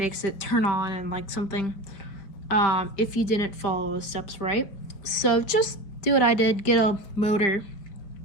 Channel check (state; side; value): late; right; 5.0 ms